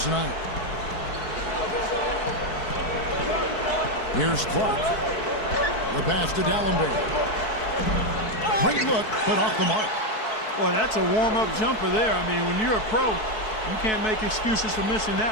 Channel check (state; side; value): late; right; 4.6 ms